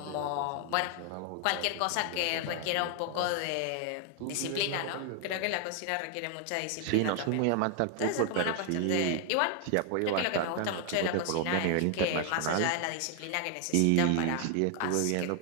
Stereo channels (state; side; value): different; both; correlation 0.00